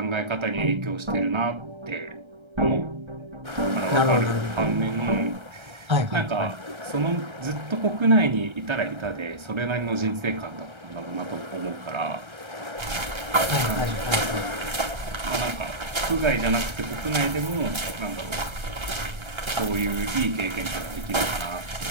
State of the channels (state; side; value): late; left; 1.3 ms